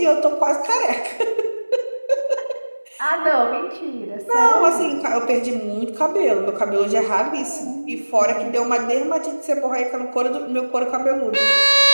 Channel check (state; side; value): inverted; both; correlation -1.00